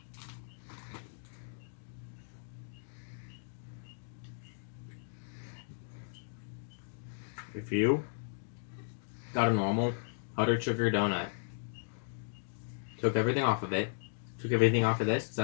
If you got a normal powdered sugar donut, took everything off of it, took everything off of this,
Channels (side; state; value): right; silent; digital silence